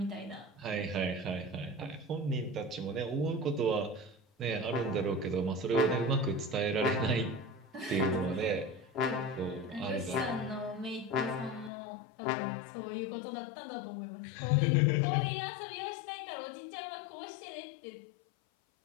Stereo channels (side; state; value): right; drops out; at 11.7 s